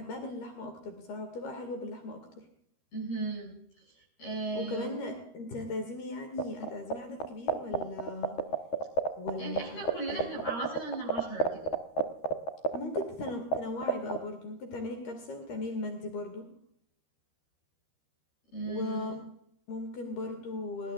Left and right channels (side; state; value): right; late; 13 ms